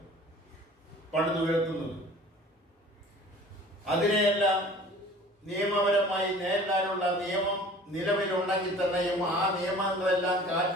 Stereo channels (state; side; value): normal; both; correlation 0.46